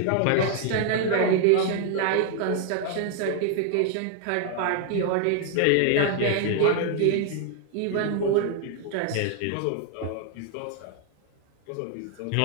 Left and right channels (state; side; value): different; both; correlation 0.00